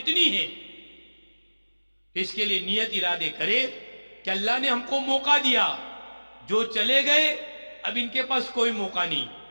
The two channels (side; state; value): both; inverted; correlation -1.00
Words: ہے۔ اس کے لیے نیت ارادے کرے کہ اللہ نے ہم کو موقع دیا، جو چلے گئے اب ان کے پاس کوئی موقع نہیں،